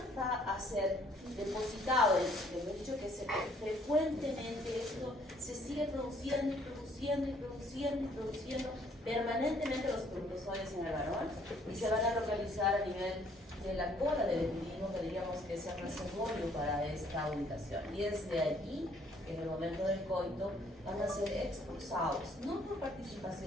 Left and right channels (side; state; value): both; normal; correlation 0.63